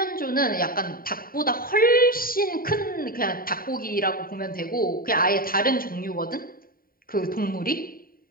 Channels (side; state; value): right; late; 0.42 ms